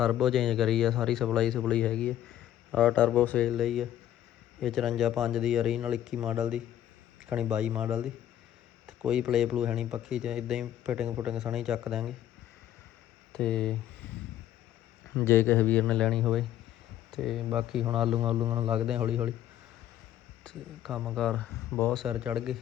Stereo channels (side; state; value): right; quieter; 12.0 dB